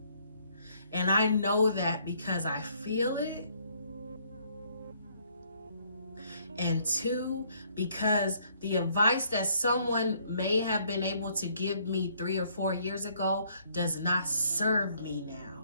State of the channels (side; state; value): both; inverted; correlation -0.66